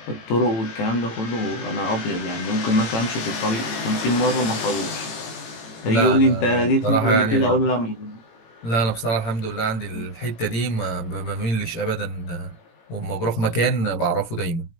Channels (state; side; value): late; right; 18 ms